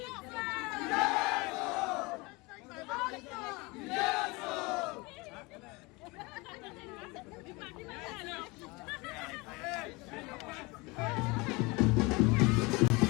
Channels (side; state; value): right; quieter; 25.3 dB